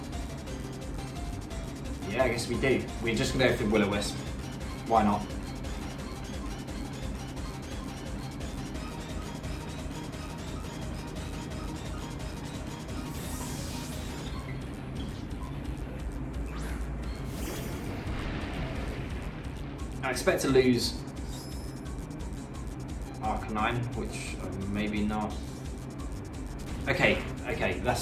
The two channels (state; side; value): identical; both; correlation 1.00